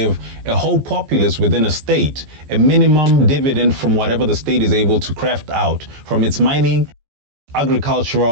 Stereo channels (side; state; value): left; late; 14 ms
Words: a whole populace within a state a minimum dividend from whatever the state is able to craft out from its mining,